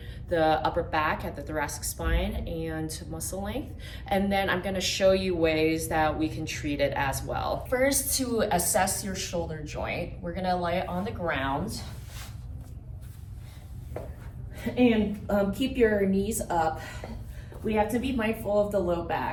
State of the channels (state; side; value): identical; both; correlation 1.00